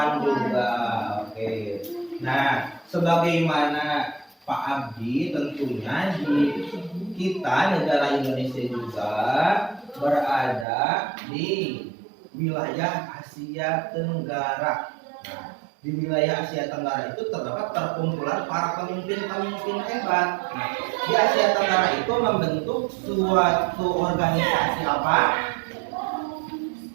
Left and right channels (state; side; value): drops out; left; at 10.7 s